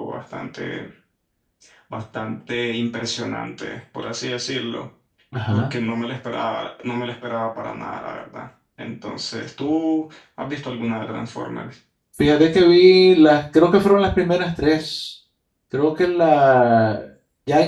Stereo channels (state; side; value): identical; both; correlation 1.00